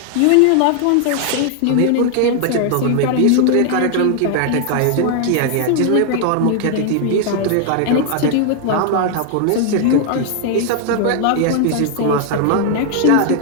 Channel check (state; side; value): different; both; correlation 0.00